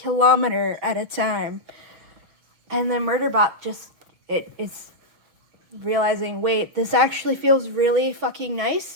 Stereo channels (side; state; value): left; late; 6.2 ms